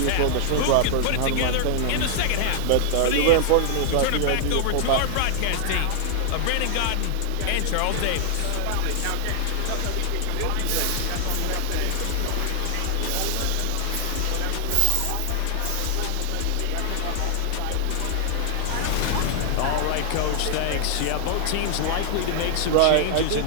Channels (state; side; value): different; both; correlation 0.00